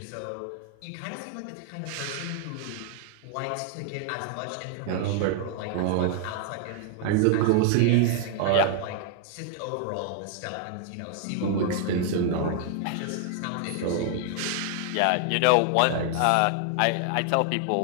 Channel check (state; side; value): different; both; correlation 0.00